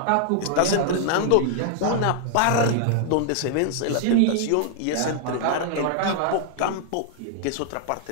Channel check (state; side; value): different; both; correlation -0.01